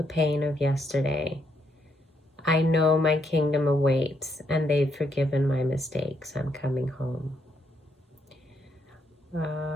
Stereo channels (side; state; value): both; normal; correlation 0.76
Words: pain of yesterday. I know my kingdom awaits, and they've forgiven my mistakes. I'm coming home.